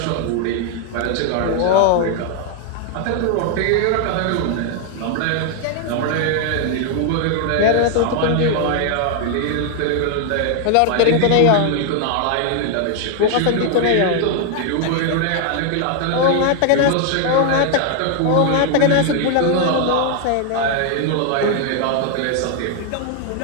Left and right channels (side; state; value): both; different; correlation 0.00